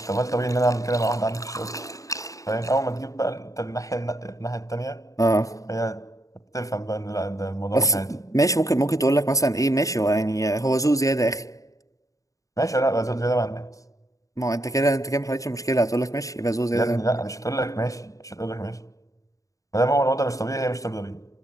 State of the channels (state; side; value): late; right; 0.16 ms